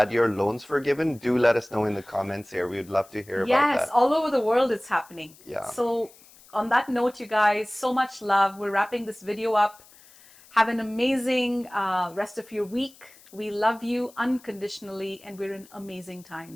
your loans forgiven, do let us know in the comments here. We would love to hear about that. Yes, all over the world it's happening. Yeah. So on that note, you guys, so much love. We're wrapping this video up. Have an amazing rest of your week. We love you unconditionally, and we're in amazing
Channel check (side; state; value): left; noise; hiss, 25 dB below the sound